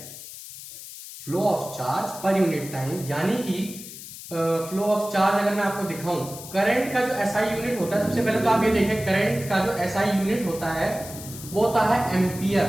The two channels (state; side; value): noise; left; hiss, 13 dB below the sound